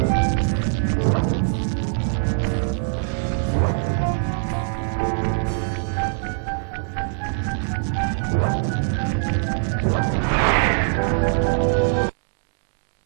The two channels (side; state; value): left; silent; digital silence